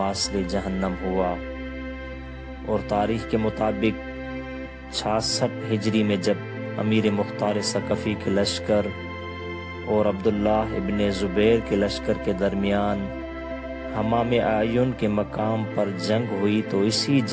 جہنم ہوا، اور تاریخ کے مطابق 66 ہجری میں جب امیر مختار ثقفی کے لشکر اور عبداللہ ابن زبیر کے لشکر کے درمیان حمام اعین کے مقام پر جنگ ہوئی تو اسی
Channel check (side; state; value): both; identical; correlation 1.00